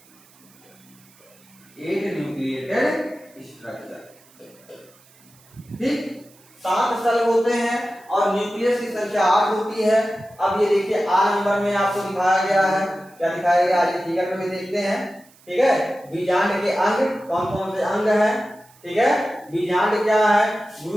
ठीक, 7 सेल होते हैं और न्यूक्लियस की संख्या 8 होती है। अब ये देखिए आ नंबर में आपको दिखाया गया है, क्या दिखाया गया है फिगर में भी देखते हैं। ठीक है, बीजांड के अंग कौन कौन से अंग हैं? ठीक है, बीजांड क्या है?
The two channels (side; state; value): right; noise; hiss, 28 dB below the sound